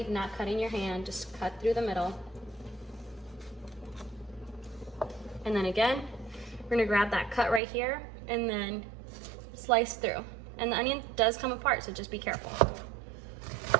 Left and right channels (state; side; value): drops out; left; at 7.6 s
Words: not cutting your hand, just cut through the middle. And then again, we're gonna grab that cut right here and then slice through. And the onion does come apart, so just be careful.